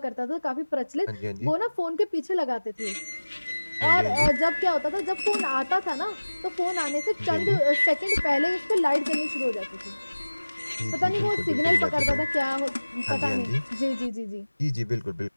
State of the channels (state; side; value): inverted; both; correlation -1.00